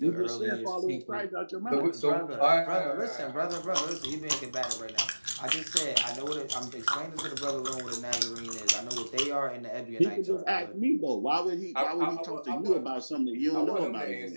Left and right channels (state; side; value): inverted; both; correlation -1.00